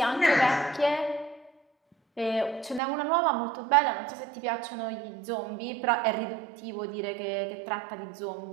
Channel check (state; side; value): drops out; left; at 2.8 s